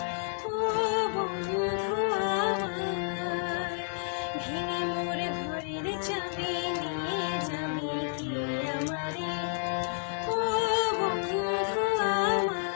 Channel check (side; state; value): right; silent; digital silence